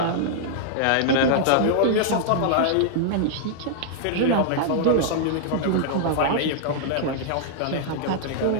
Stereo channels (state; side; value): different; both; correlation -0.01